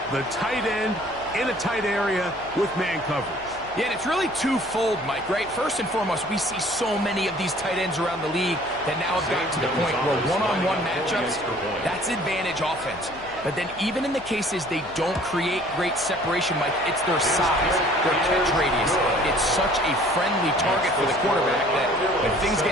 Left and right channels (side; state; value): left; noise; hum, 22 dB below the sound